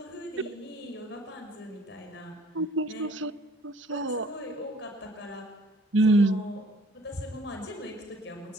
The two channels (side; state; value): both; normal; correlation 0.55